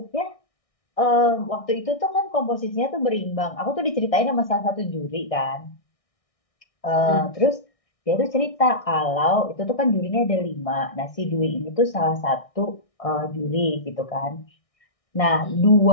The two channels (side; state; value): right; late; 1.6 ms